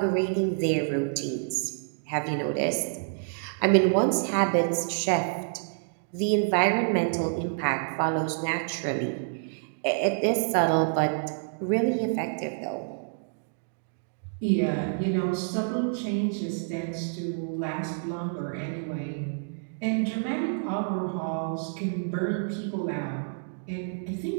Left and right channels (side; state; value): left; silent; digital silence